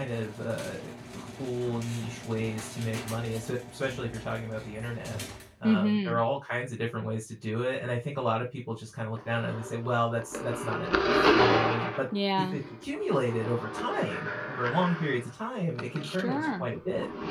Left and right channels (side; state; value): both; identical; correlation 1.00